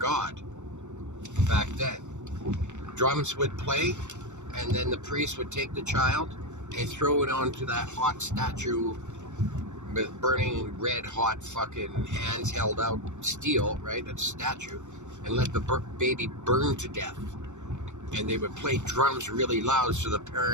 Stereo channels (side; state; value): left; late; 0.84 ms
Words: back then. Drums would play, and then the priest would take the child and throw it onto that hot statue with burning red hot fucking hands held out steel, right, a statue, and let the baby burn to death. And they would play drums really loud so the